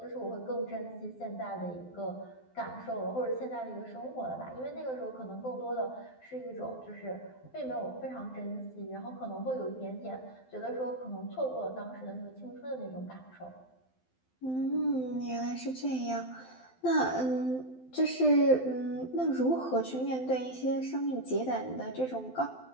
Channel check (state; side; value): late; right; 12 ms